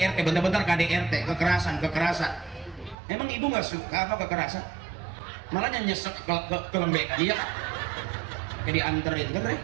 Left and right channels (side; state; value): left; drops out; at 3.0 s